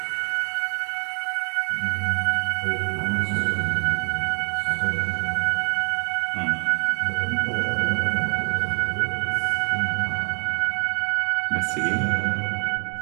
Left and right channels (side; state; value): left; quieter; 34.4 dB